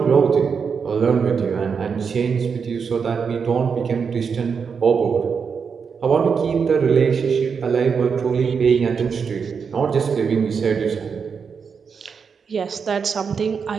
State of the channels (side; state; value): left; quieter; 6.0 dB